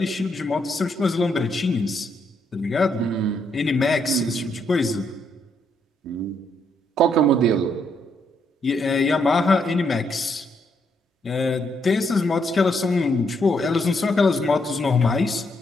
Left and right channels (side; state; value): both; normal; correlation 0.75